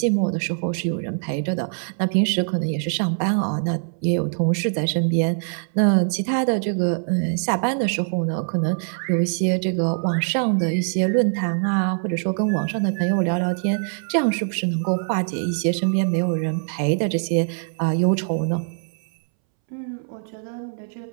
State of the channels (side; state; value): left; silent; 63 dB below the other